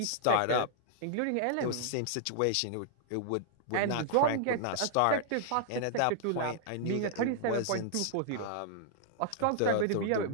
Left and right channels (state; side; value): different; both; correlation -0.01